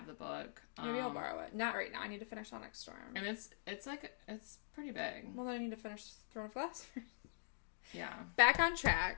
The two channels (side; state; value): right; silent; digital silence